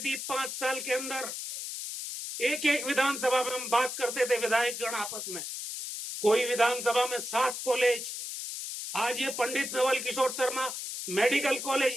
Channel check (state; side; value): noise; left; hiss, 6 dB below the sound